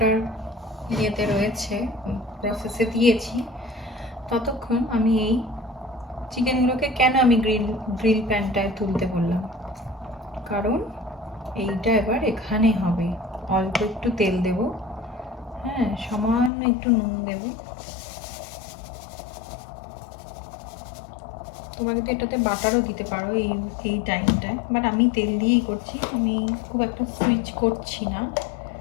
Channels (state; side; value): drops out; right; at 16.5 s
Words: ইয়েতে রয়েছে, প্রসেসে দিয়েছি, ততক্ষণ আমি এই চিকেনগুলোকে কেন আমি গ্রিল প্যানটায় তুলতে বললাম, কারণ এইটা এবার এখানে হবে। অল্প একটু তেল দেব, হ্যাঁ, সামান্য একটু নুন দেব। তোমরা কিন্তু এটাতে বাটারও দিতে পারো এই টাইমটায়, বাট আমি তেল দিয়েই করছি, আমি খুব একটা সুইচ করছি না।